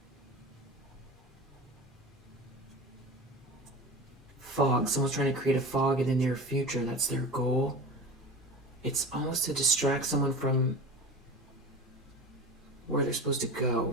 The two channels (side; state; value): both; normal; correlation 0.32